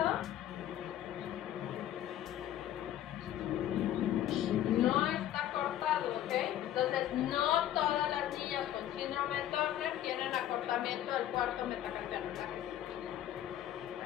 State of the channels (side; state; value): right; quieter; 12.0 dB